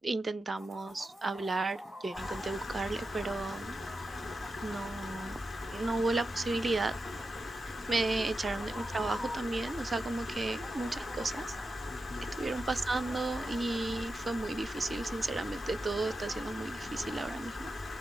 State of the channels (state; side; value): normal; both; correlation 0.90